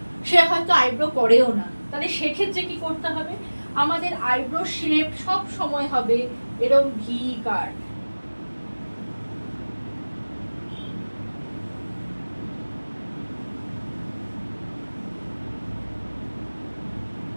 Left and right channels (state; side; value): inverted; both; correlation -1.00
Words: সে হয়তো আইব্রো করেও না। তাহলে সেক্ষেত্রে কি করতে হবে, আমাদের আইব্রো শেপ সব সময় হবে এরকম ভি কাট।